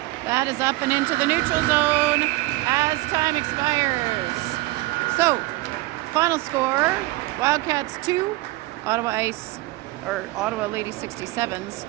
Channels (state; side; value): quieter; left; 19.9 dB